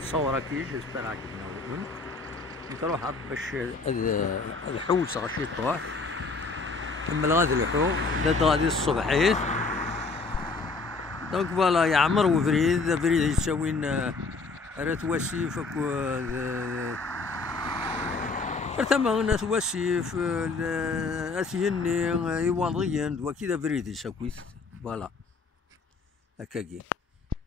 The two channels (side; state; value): right; quieter; 4.0 dB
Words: صورة كي جيسبر عجبنا نروح باش الحوت غاشي طوح كمل غادي الحوت داد غادي الصبحيت دونك فوالا يعمر وفريد فريد يساوين راه واسيف ثما ناس واسيف اثيني يواضيين دوا كذا فريد يساكويت فوالا هكاكي